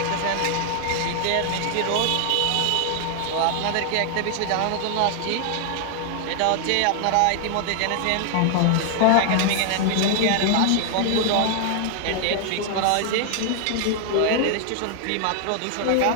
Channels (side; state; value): both; different; correlation 0.00